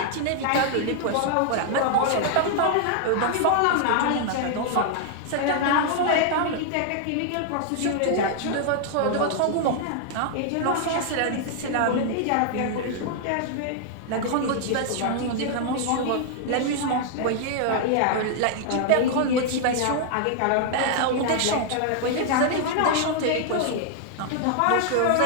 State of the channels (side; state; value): both; different; correlation 0.00